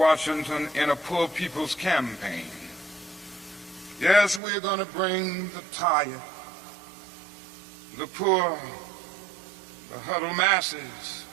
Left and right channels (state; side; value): drops out; left; at 4.4 s